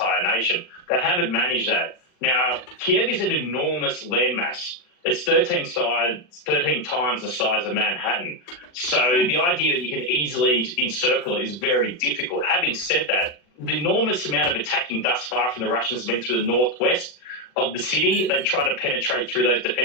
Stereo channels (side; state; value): right; late; 40 ms